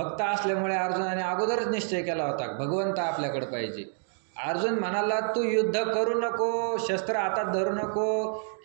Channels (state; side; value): silent; left; 59 dB below the other